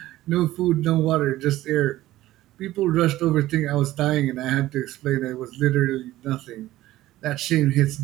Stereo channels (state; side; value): quieter; left; 15.6 dB